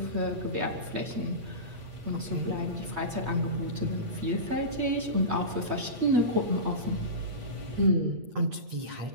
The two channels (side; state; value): left; late; 8.5 ms